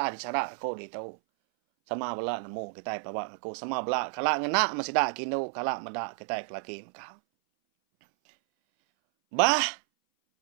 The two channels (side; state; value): left; silent; 58 dB below the other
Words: dicara ko di tau. Sama bala nemu kita bawa aku sama bala kala ngena masih dak kindo kala medak kita laki maka. Bah,